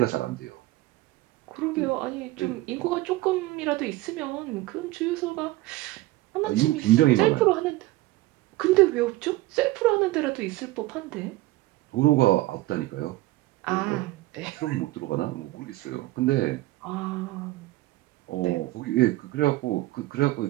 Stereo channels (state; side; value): quieter; left; 18.3 dB